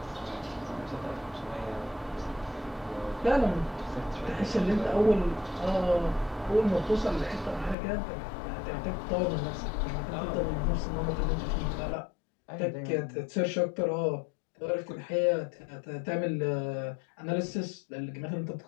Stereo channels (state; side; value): drops out; right; at 7.8 s